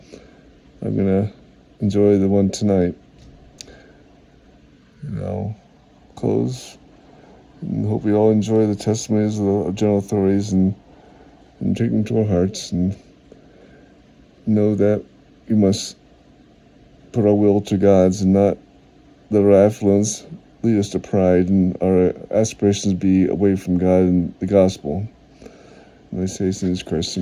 I'm going to enjoy the one tonight. And I'll close and hope we all enjoy the testimonies of the general authorities and take them to our hearts and know that we must put our will to God's and not let our affluence lead us to pride and our aspirations be away from God and the gospel. And I say, in Jesus Christ,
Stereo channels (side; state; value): both; identical; correlation 1.00